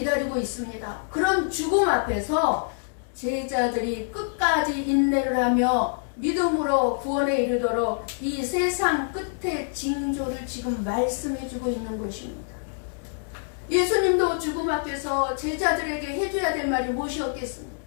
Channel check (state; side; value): silent; right; digital silence